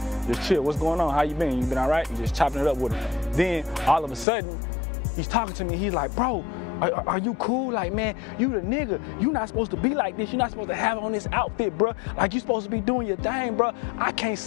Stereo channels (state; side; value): drops out; right; at 4.2 s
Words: just chill. What's going on? How you been? You been all right?" And just chopping it up with him. Then all of a sudden, he's talking to me. He's like, "Bro, are you cool? Like, man, you the nigga. You not supposed to be like this. You're not supposed to have on this outfit, bro. Like, you supposed to be doing your thing, bro. I can't